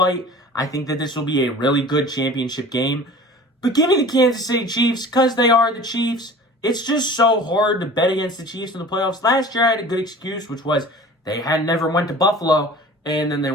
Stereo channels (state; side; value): normal; both; correlation 0.42